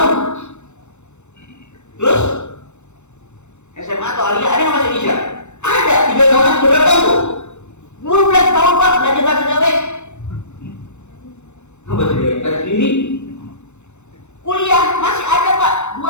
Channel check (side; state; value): right; late; 0.83 ms